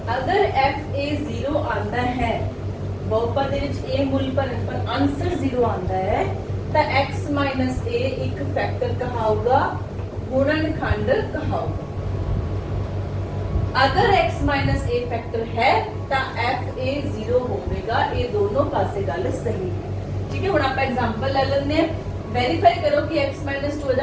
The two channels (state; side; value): identical; both; correlation 1.00